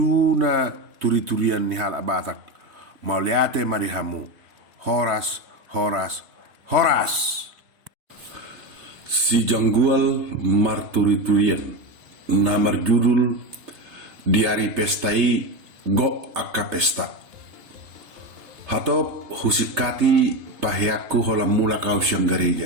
na turi-turian ni hal abatak. Mau liate mari hamu. Horas, horas, horas. Si janggual marturi-turian. Namar judul di hari pestai go akka pesta. Hatop husikati pahiaku hola mula kau siang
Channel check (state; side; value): late; left; 3.3 ms